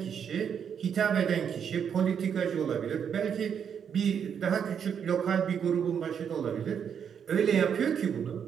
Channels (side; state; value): left; quieter; 7.7 dB